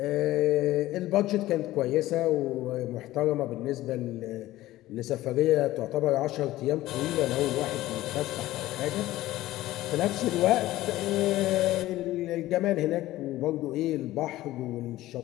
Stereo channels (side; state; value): right; quieter; 16.0 dB